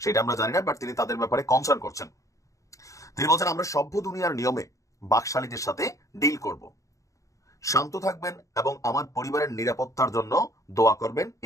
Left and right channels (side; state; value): right; late; 0.16 ms